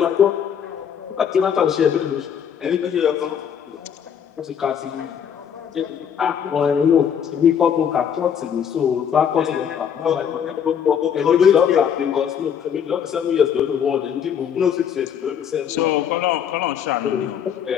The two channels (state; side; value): quieter; right; 8.2 dB